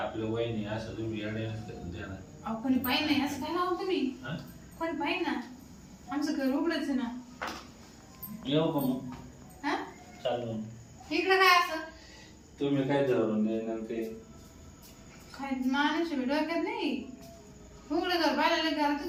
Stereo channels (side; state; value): both; identical; correlation 1.00